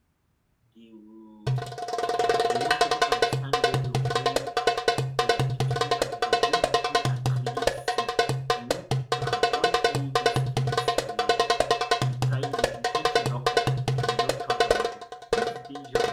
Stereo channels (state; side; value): identical; both; correlation 1.00